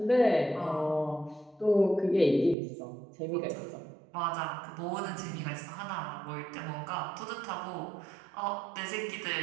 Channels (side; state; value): left; drops out; at 2.6 s